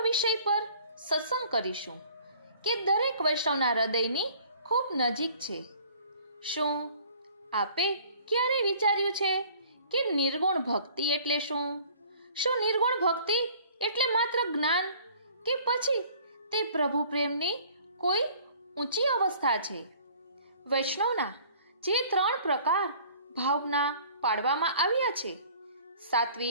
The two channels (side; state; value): both; inverted; correlation -0.52